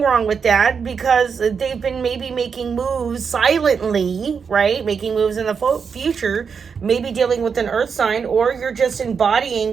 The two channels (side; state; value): left; quieter; 6.1 dB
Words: wrong with that, because they've been maybe making moves silently, right? Making moves in the future, maybe dealing with an earth sign, or you're just embodying